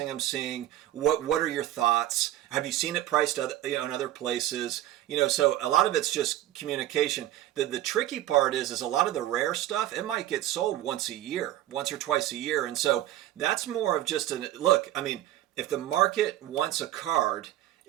I'm seeing. What are your thoughts? Have you seen it priced in other places? So a lot of it's just communication. The tricky part is a lot of the rare stuff, it might get sold once or twice a year. And so that's more of just look, I mean, if the market wants a card,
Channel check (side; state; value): left; quieter; 13.7 dB